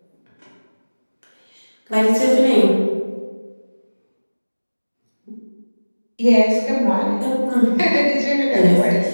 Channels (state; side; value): inverted; both; correlation -1.00